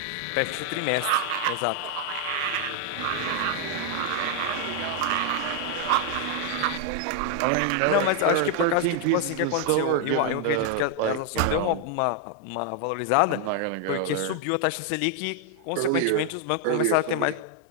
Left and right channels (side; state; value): both; different; correlation 0.00